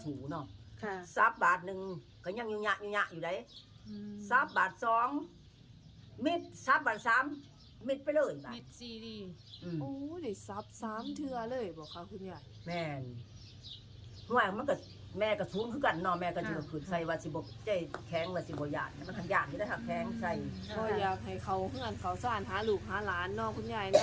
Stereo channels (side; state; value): both; identical; correlation 1.00